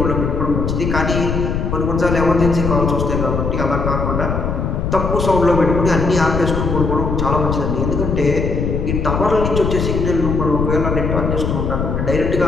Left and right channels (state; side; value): noise; left; rumble, 1 dB below the sound